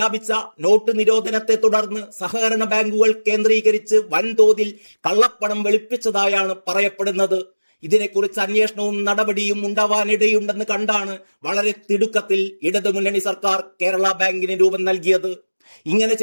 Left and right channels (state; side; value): inverted; both; correlation -1.00